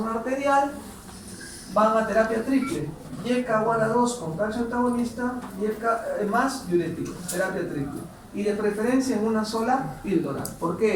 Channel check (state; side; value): identical; both; correlation 1.00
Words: arterial, van a terapia triple. YECA o ARA2 con calcio antagonista, YECA más diurético, terapia triple. Y de preferencia en una sola píldora. ¿Por